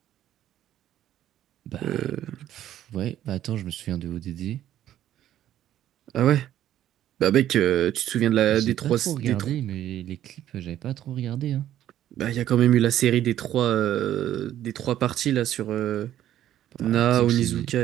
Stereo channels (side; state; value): left; quieter; 12.0 dB